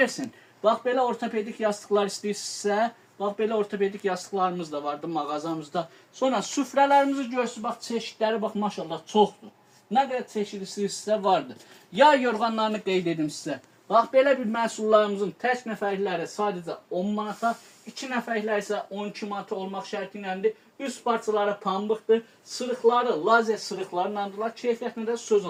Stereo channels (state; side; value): identical; both; correlation 1.00